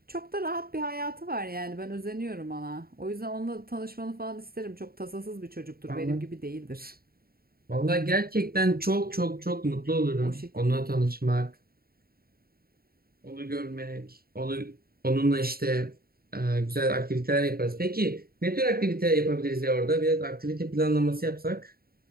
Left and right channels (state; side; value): late; left; 0.44 ms